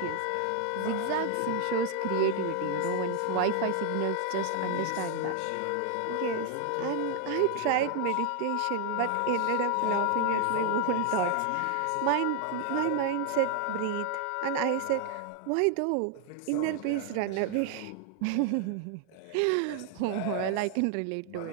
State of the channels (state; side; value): different; both; correlation 0.00